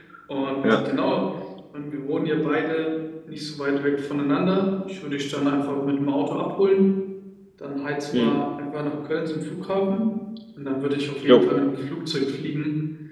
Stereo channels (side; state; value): both; identical; correlation 1.00